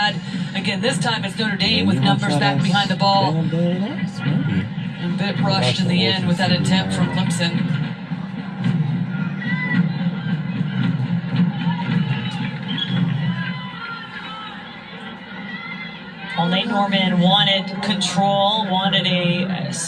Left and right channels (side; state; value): both; identical; correlation 1.00